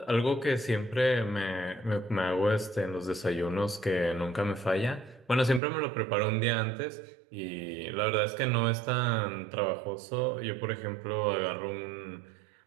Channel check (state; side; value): drops out; left; at 5.6 s